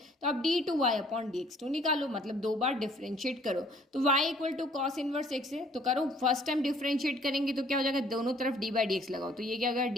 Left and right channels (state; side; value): normal; both; correlation 0.59